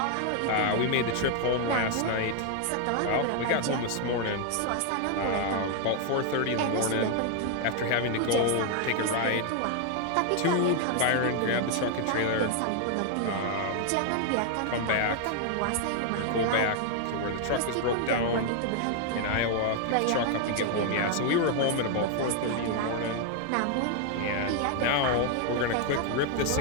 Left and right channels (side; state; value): both; different; correlation 0.00